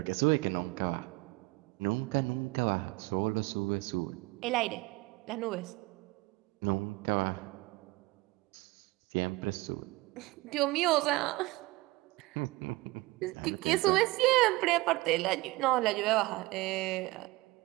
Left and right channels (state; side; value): quieter; left; 21.4 dB